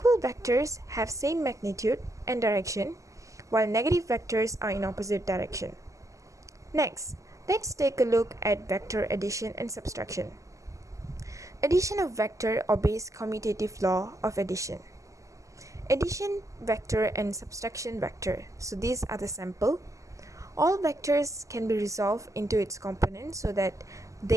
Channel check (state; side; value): late; left; 0.16 ms